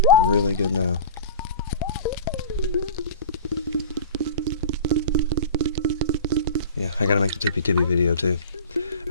Really good now. Yeah, I gotta make the tippy video, too.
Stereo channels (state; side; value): inverted; both; correlation -0.38